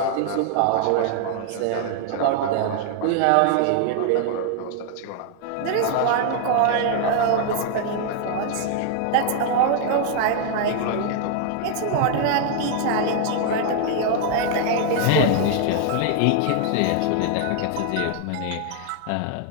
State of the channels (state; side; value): different; both; correlation 0.00